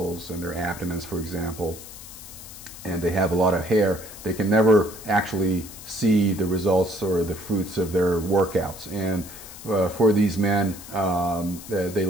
and their abdomens, for example, and they have a lot of hair, they can never actually see the results or the fruits of their workouts. And for these men, they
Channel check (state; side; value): noise; left; hiss, 15 dB below the sound